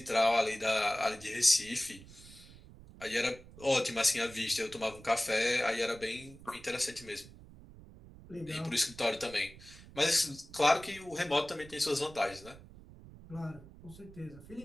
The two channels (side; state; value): right; noise; rumble, 19 dB below the sound